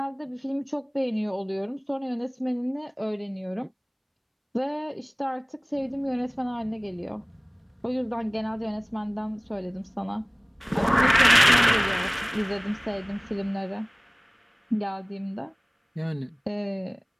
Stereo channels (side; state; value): both; identical; correlation 1.00